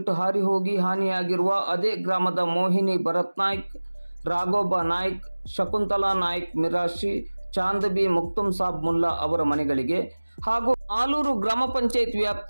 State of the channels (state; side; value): inverted; both; correlation -1.00